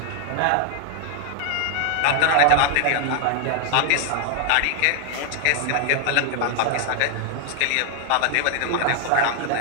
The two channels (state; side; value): different; both; correlation 0.00